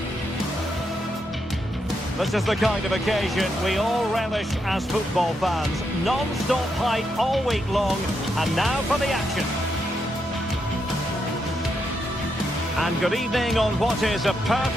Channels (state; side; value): normal; both; correlation 0.81